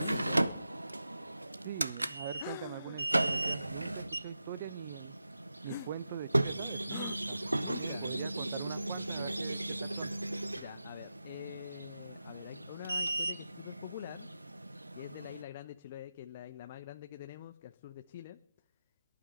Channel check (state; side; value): inverted; both; correlation -0.89